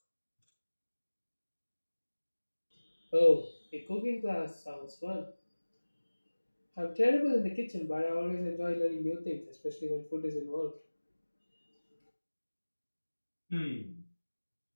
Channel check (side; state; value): both; inverted; correlation -1.00